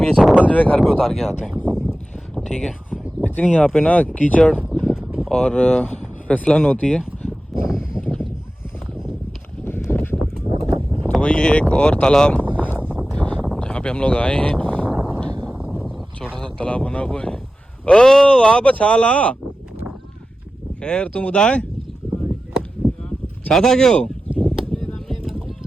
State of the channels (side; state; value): both; normal; correlation 0.94